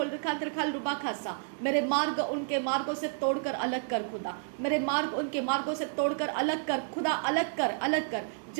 रखांद्र खाल रुबा खासा। मेरे मार्ग उनके मार्गों से तोड़कर अलग कर खुदा, मेरे मार्ग उनके मार्गों से तोड़कर अलग कर खुदा, अलग कर, अलग कर।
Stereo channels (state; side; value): silent; left; digital silence